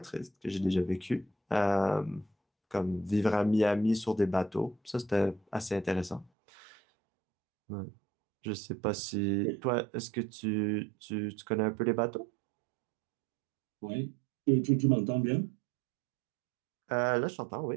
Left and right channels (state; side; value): drops out; left; at 6.3 s